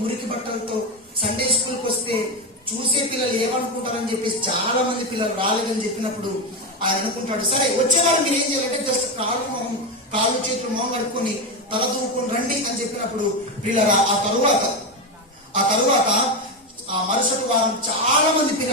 మురికి బట్టలతో సండే స్కూల్కి వస్తే చూసే పిల్లలు ఏమనుకుంటారని చెప్పేసి చాలా మంది పిల్లలు రాలేదని చెప్పినప్పుడు ఆయన అనుకుంటాడు, సరే వచ్చేవాళ్ళు మీరు ఏం చేయాలంటే జస్ట్ కాళ్ళు చేతులు మొహం కడుక్కొని తల దూకుని రండి అని చెప్పినప్పుడు పిల్లలు ఆ తరువాత ఆ మరుసటి వారం చాలా మంది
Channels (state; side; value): normal; both; correlation 0.13